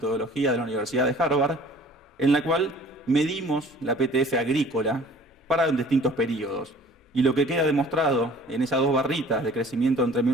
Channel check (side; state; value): both; normal; correlation 0.49